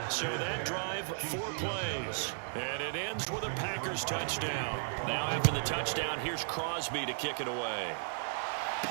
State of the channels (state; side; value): silent; left; digital silence